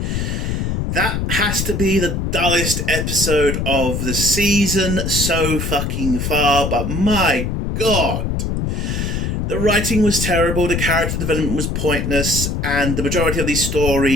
That has to be the dullest episode of the season so fucking far, but my god. The writing was terrible, the character development was pointless, and the majority of these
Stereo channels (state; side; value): noise; left; rumble, 1 dB below the sound